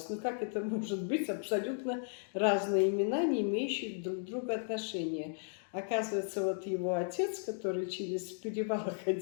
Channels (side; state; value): right; silent; digital silence